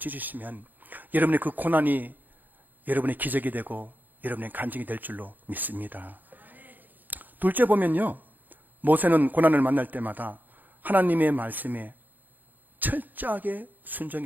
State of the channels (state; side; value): late; left; 0.085 ms